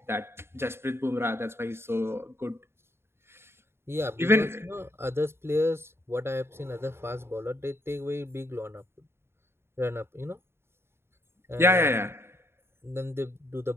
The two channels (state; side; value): late; left; 0.12 ms